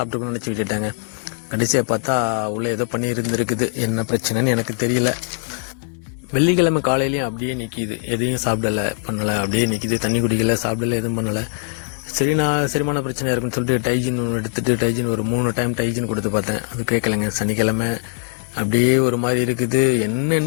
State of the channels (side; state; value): right; silent; digital silence